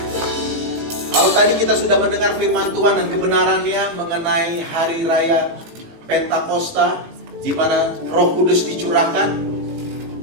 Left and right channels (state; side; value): late; left; 18 ms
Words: Kalau tadi kita sudah mendengar firman Tuhan dan kebenarannya mengenai hari raya Pentakosta, di mana Roh Kudus dicurahkan,